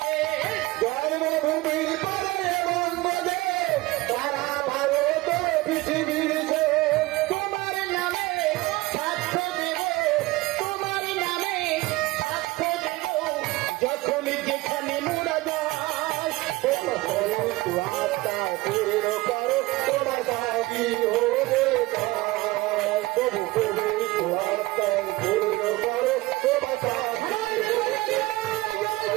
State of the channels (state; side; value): quieter; left; 20.5 dB